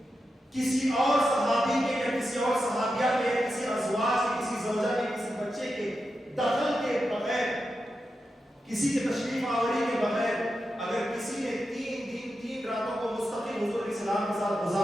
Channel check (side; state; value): both; normal; correlation 0.89